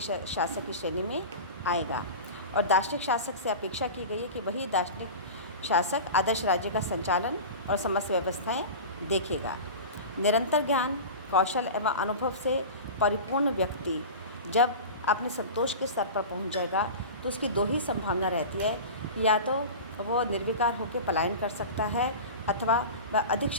शासक की श्रेणी में आएगा। और दार्शनिक शासक से अपेक्षा की गई है कि वही दार्शनिक शासक आदर्श राज्य का संचालन और समस्त व्यवस्थाएं देखेगा। निरंतर ज्ञान, कौशल एवं अनुभव से परिपूर्ण व्यक्ति जब अपने संतोष के स्तर पर पहुंच जाएगा, तो उसकी दो ही संभावना रहती है कि या तो वो निर्विकार होकर पलायन कर सकता है, अथवा वह अधिक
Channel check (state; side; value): inverted; both; correlation -0.31